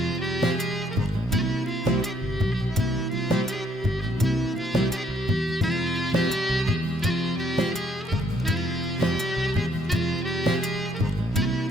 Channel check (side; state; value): both; normal; correlation 0.67